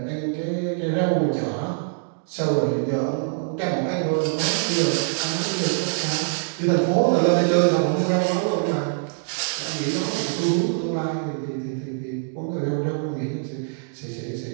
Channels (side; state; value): left; silent; digital silence